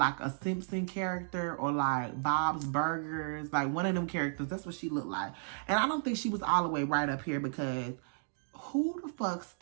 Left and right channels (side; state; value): left; silent; digital silence